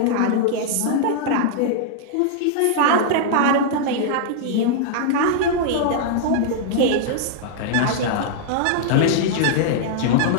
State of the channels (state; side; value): different; both; correlation -0.01